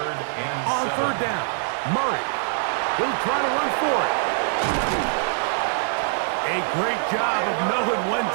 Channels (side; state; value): left; silent; digital silence